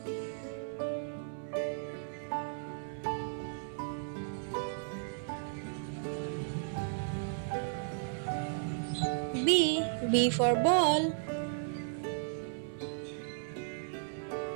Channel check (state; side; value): silent; left; 54 dB below the other